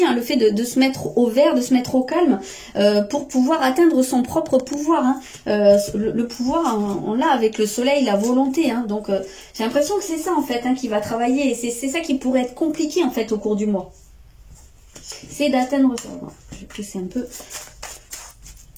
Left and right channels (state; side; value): identical; both; correlation 1.00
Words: hein, le fait de se mettre au vert, de se mettre au calme pour pouvoir atteindre son propre pouvoir. Hein. Le pouvoir, hein, on l'a avec le soleil, la volonté. Hein. Donc j'ai l'impression que c'est ça en fait, hein, qui va travailler. Et c'est ça qui pourrait être compliqué en fait au cours du mois. C'est d'atteindre ça. Bon, je vais pousser un peu.